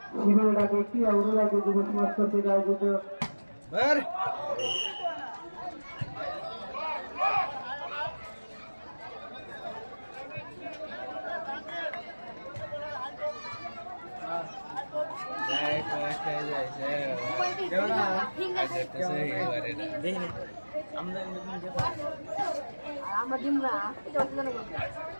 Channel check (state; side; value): inverted; both; correlation -1.00